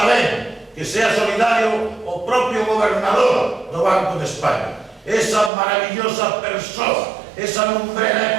ben que sea solidario o propio gobernador do Banco de España. Esa maravillosa persoa, esa lumbrera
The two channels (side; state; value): left; drops out; at 5.5 s